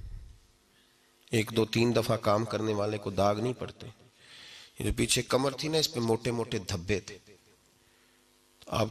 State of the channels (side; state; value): both; identical; correlation 1.00